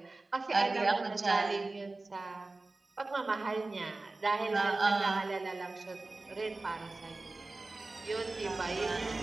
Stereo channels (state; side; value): quieter; left; 3.2 dB